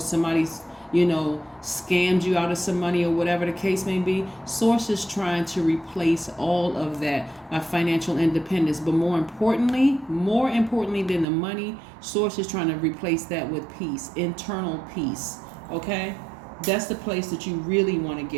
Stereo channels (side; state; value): left; drops out; at 11.2 s